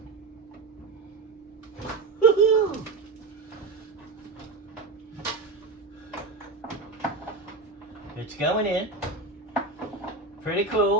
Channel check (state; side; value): quieter; left; 3.7 dB